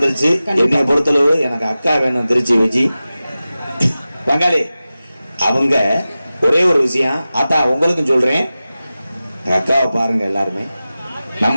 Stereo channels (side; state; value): both; inverted; correlation -0.95